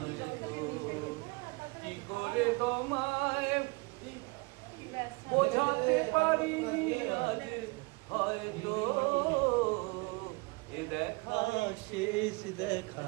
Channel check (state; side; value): quieter; left; 27.8 dB